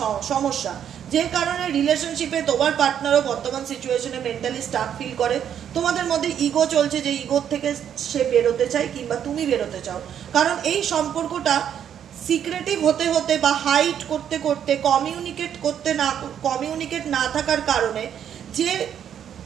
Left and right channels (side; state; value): left; quieter; 9.2 dB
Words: সমস্যা, যে কারণে রিলেশনশিপে তোমার পার্টনারও বর্তমান সিচুয়েশনে মেন্টালি স্টাক ফিল করে। তোমাদের মধ্যে ইগো চলছে, যে ইগোর থেকে সে বেরোতে চায় কিংবা তুমি বেরোতে চাও। কারণ এই সম্পর্কটা সিক্রেটিভ হতে হতে বা হাইড করতে করতে, কমিউনিকেট না থাকার কারণে যে